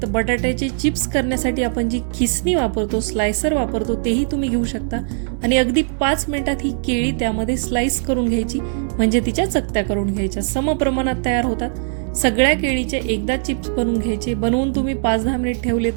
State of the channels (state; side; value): silent; left; digital silence